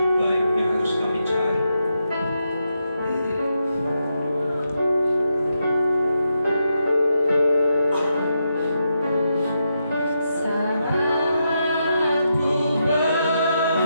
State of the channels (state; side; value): inverted; both; correlation -0.84